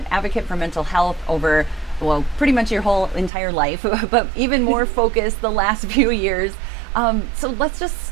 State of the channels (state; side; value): drops out; left; at 3.3 s